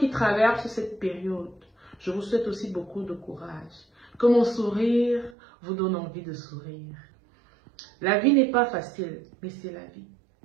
traverse cette période, je vous souhaite aussi beaucoup de courage. Que mon sourire vous donne envie de sourire. La vie n'est pas facile, mais c'est la vie.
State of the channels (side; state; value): left; drops out; at 5.4 s